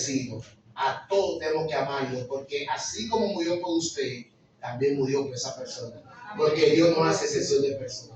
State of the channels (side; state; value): both; identical; correlation 1.00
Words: A todos tenemos que amarlo, porque así como murió por usted, también murió por esa persona. Porque Dios no hace excepción de